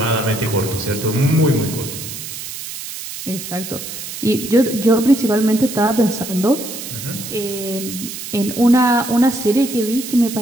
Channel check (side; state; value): right; noise; hiss, 9 dB below the sound